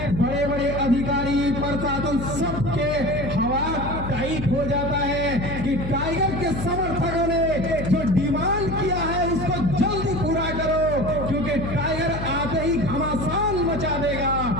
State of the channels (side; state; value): left; noise; hum, 6 dB below the sound